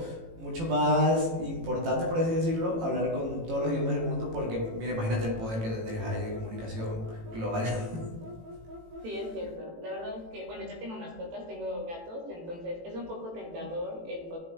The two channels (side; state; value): left; late; 18 ms